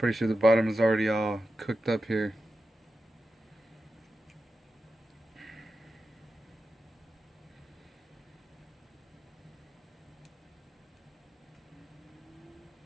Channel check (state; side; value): normal; both; correlation 0.91